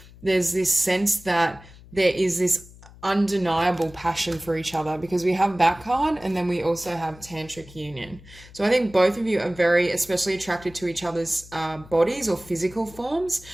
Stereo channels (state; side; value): noise; left; hum, 21 dB below the sound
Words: there's this sense that there is this undeniable passion for each other, because we have that card, and then we also have tantric union. So I think both of you are very especially attracted to each other's bodies or physical forms,